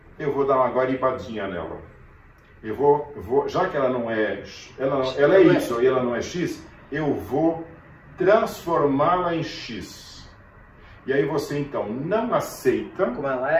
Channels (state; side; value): identical; both; correlation 1.00